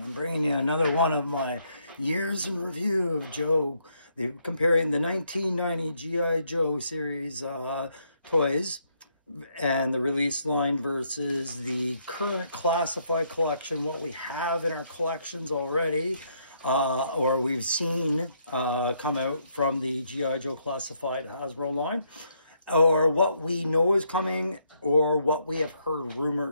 I'm bringing you another one of my years in review of Joe, comparing the 1990 G.I. Joe series toys and the release line versus the current classified collection, what we have in our collections already, or we've seen come out from the G.I. Joe classified Hasbro line, or what we know is coming, or what we have heard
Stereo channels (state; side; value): inverted; both; correlation -0.74